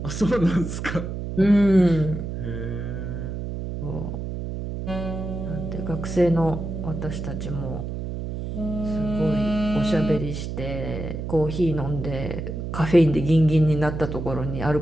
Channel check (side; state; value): right; noise; hum, 5 dB below the sound